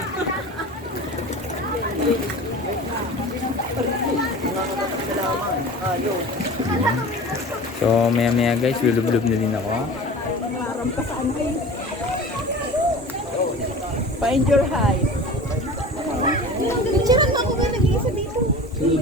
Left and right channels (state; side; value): normal; both; correlation 0.37